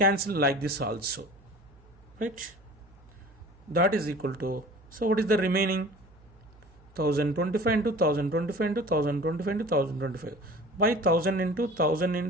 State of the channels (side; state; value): right; noise; hum, 26 dB below the sound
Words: like this also, right? That is equal to, so what is the remaining? 1025 into 1025 into 1025 into 1025 by 1000 into 1000